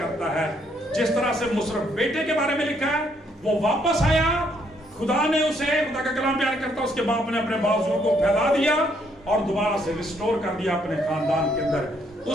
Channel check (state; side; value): normal; both; correlation 0.70